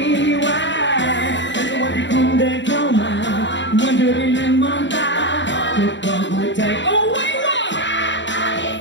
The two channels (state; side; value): late; right; 0.53 ms